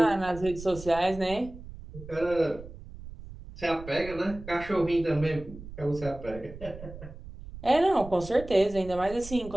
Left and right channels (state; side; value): noise; right; rumble, 14 dB below the sound